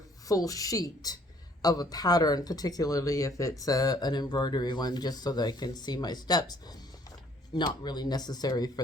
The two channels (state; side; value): normal; both; correlation 0.61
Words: full sheet of a pattern, particularly if it's an embroidery one, just so that I can see my steps, not really necessary